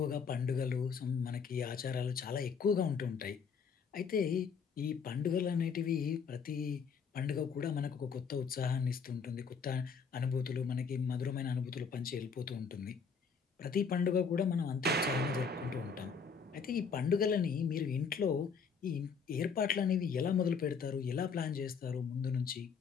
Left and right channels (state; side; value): quieter; right; 5.9 dB